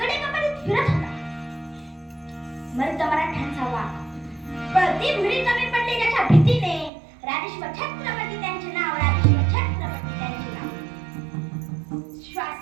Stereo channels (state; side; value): drops out; left; at 6.9 s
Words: फिरत होता. मर्द मराठ्यांचा वाघ, पळती भिडी कमी पडली ज्याच्या भीतीने, राजेश्वर छत्रपती त्यांचे नाव, राजेश्वर छत्रपती त्यांचे नाव.